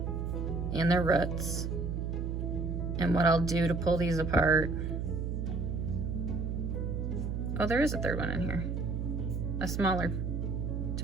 and their roots. And what I'll do to pull these apart, oh, there is a 3rd one in here, a smaller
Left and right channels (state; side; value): noise; right; hum, 2 dB below the sound